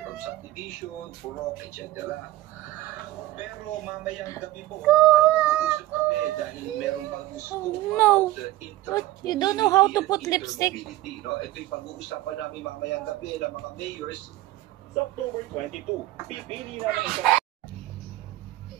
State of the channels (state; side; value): quieter; left; 16.4 dB